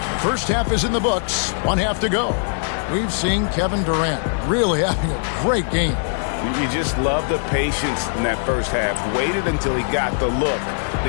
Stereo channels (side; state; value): right; silent; digital silence